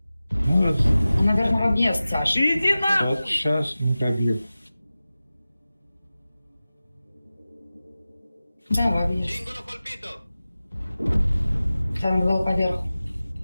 Ну, Наверное, в объезд, Саша. Иди на! вот сейчас не пробил. Да, в объезд. Там был поверху.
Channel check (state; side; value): inverted; both; correlation -0.96